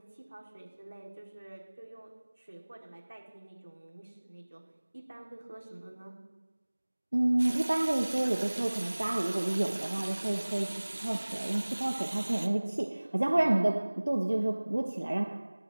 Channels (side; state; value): both; inverted; correlation -1.00